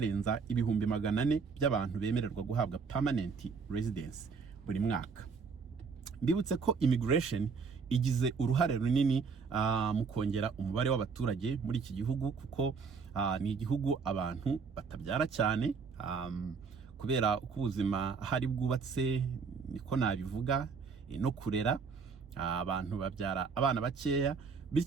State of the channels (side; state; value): left; quieter; 5.3 dB